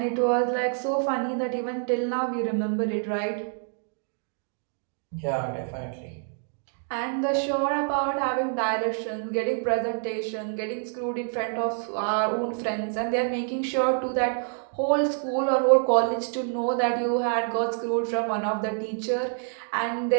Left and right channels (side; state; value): left; silent; 57 dB below the other